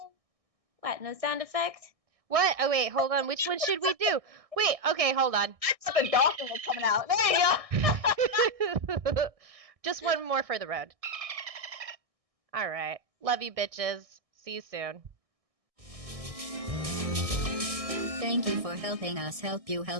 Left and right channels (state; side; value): late; left; 1.6 ms